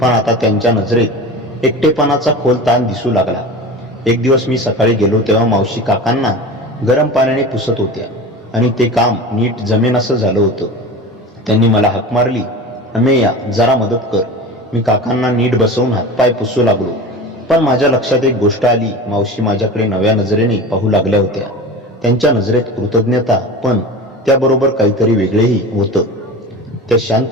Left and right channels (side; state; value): both; normal; correlation 0.32